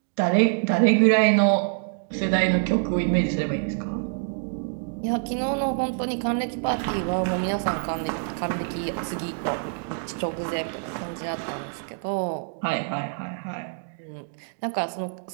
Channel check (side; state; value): left; silent; digital silence